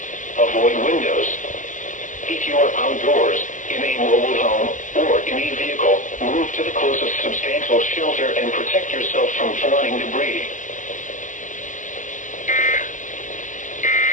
Avoid windows. If you are outdoors, in a mobile home, or in a vehicle, move to the closest substantial shelter and protect yourself from flying debris.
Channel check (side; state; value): right; late; 0.37 ms